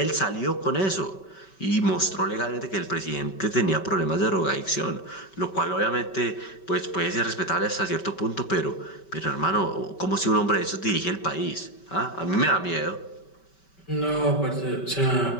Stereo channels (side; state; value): right; late; 5.2 ms